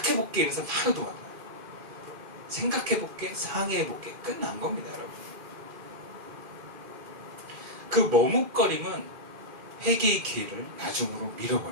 이래서 바로 도망가요. 생각해볼게, 상의해볼게. 끝난 겁니다, 여러분. 그 머뭇거림은 회개의 기회를 나중으로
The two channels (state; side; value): late; left; 2.4 ms